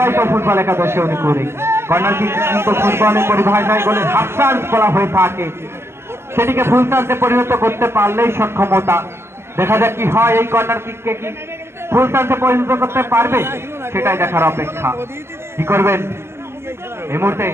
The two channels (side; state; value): left; late; 0.12 ms